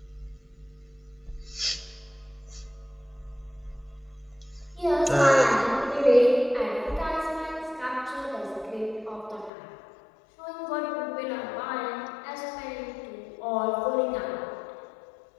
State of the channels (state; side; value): drops out; right; at 9.5 s